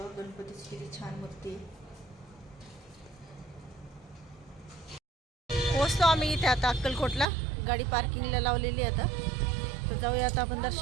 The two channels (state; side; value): drops out; left; at 7.2 s